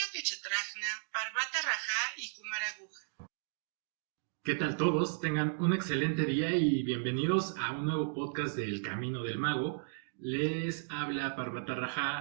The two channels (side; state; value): left; silent; digital silence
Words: Kechetrajna, Parvata Raja y Kumaraguja. ¿Qué tal todos? Tengan un excelente día y bienvenidos a un nuevo podcast del Camino del Mago. Les habla Parvata